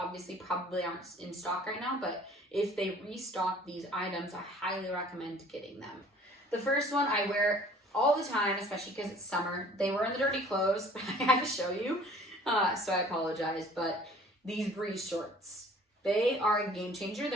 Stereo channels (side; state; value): both; normal; correlation 0.51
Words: probably aren't in stock right now, but if they restock these items, I highly recommend getting them. The first one I wear all the time, especially because it's summer. They were in the dirty clothes, but I had to show you, so I apologize. But these Bree shorts, they are a game changer.